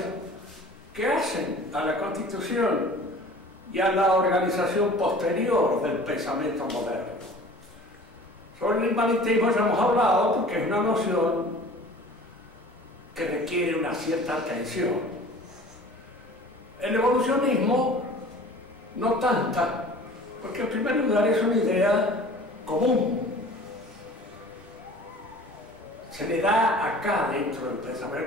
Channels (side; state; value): left; noise; rumble, 29 dB below the sound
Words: que hacen a la constitución y a la organización posterior del pensamiento moderno. Sobre el inmanentismo ya hemos hablado porque es una noción que requiere una cierta atención. El evolucionismo no tanta, porque en primer lugar es una idea común. Se le da acá, dentro del